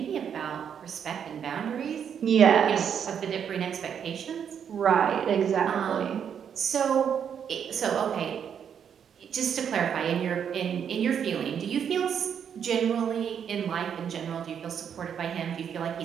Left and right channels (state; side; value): quieter; left; 8.0 dB